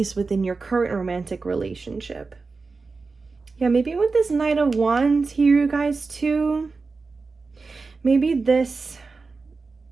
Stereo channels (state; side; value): quieter; left; 4.2 dB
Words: within your current romantic relationship. Yeah, maybe with this Knight of Wands here, you guys, too. Maybe this